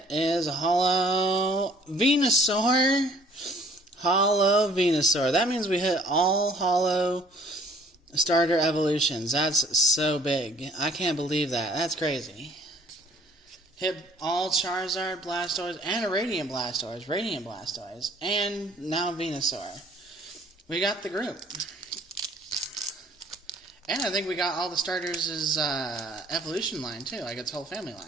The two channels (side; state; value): both; normal; correlation 0.55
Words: is a holo Venusaur. Holo Venusaur. That means we hit all holo starter evolutions. That's so big. I can't believe that. That's crazy. Hit all Charizard, Blastoise, and a Radiant Blastoise, and now Venusaur. We got the group. And I think we got all the starters' evolution line, too, like its whole family